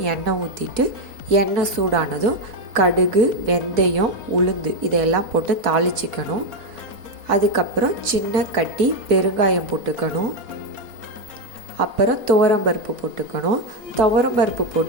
எண்ணெய் ஊற்றிட்டு, எண்ணெய் சூடானதும் கடுகு, வெந்தயம், உளுந்து இதையெல்லாம் போட்டு தாளிச்சிக்கணும். அதுக்கப்புறம் சின்ன கட்டி பெருங்காயம் போட்டுக்கணும். அப்புறம் துவரம்பருப்பு போட்டுக்கணும். துவரம்பருப்பு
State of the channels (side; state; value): left; late; 4.2 ms